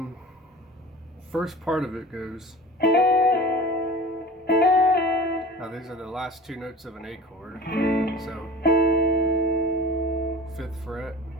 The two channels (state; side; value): normal; both; correlation 0.39